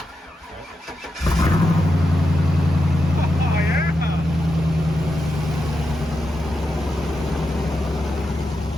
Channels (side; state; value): both; normal; correlation 0.87